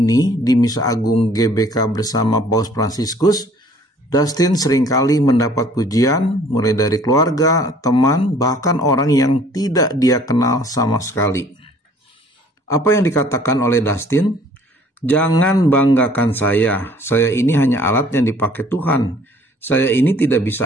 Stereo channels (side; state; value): both; normal; correlation 0.56